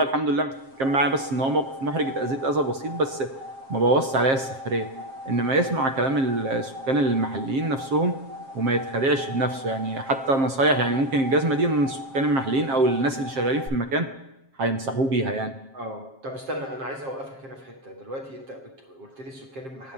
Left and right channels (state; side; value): late; left; 7.5 ms